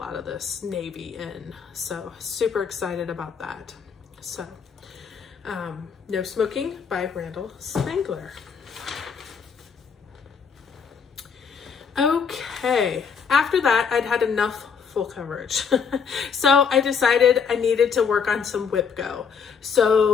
of this navy in. So super excited about that. So No Smoking by Randall Spangler. Okay, after that, I'd had enough full coverage. So I decided I needed to work on some Whip Go.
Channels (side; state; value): right; quieter; 6.3 dB